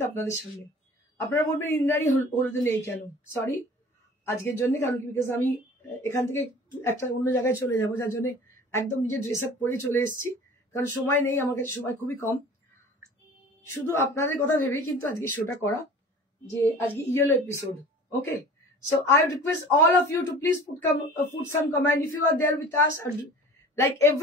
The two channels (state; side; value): normal; both; correlation 0.43